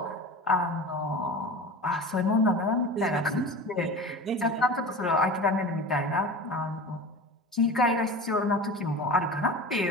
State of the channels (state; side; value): normal; both; correlation 0.33